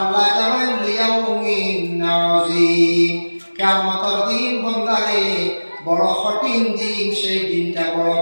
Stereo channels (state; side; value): inverted; both; correlation -1.00